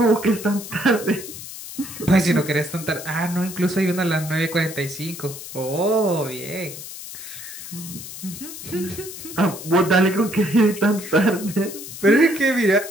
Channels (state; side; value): noise; left; hiss, 12 dB below the sound